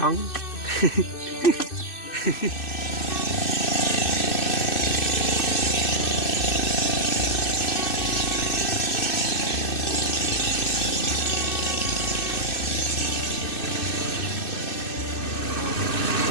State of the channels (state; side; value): late; right; 2.6 ms